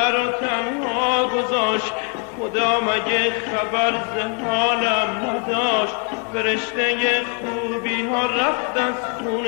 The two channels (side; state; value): right; quieter; 37.3 dB